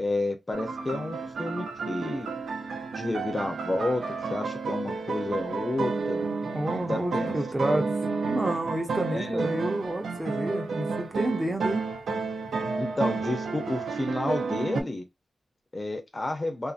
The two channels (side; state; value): both; normal; correlation 0.90